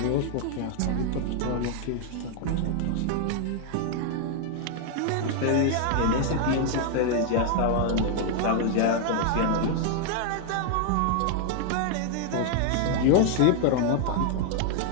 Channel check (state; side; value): different; both; correlation 0.00